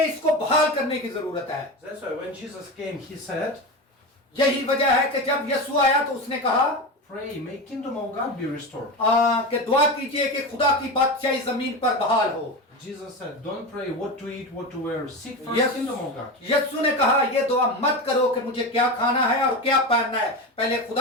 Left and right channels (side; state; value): both; normal; correlation 0.21